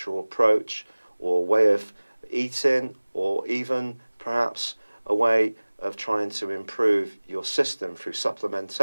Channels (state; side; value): inverted; both; correlation -1.00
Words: approach or way of eating, or even perhaps a way of trying to improve your system through